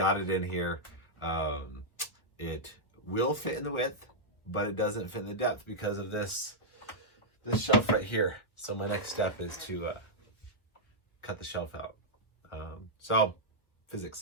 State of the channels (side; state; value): right; late; 1.3 ms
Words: it in here, it will fit in the width, but it doesn't fit in the depth because of this shelf right here. So my next step is to cut the shelf out. So